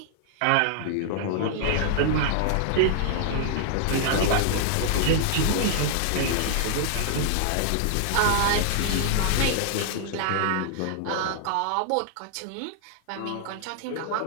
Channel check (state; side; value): different; both; correlation -0.01